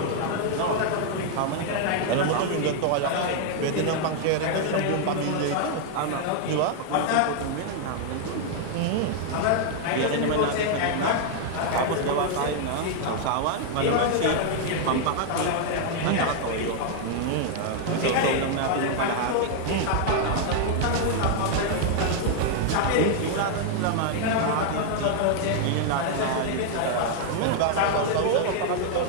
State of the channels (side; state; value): both; different; correlation 0.00